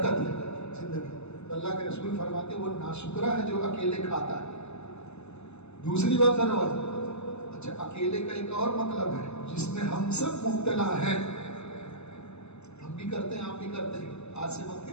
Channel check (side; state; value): right; late; 0.81 ms